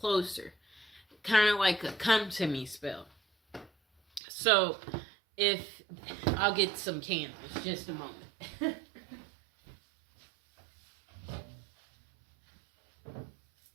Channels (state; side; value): drops out; left; at 4.2 s